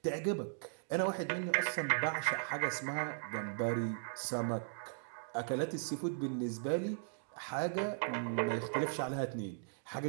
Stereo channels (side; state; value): left; silent; digital silence